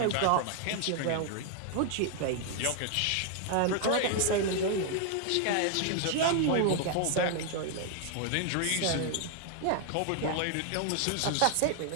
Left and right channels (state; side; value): different; both; correlation 0.00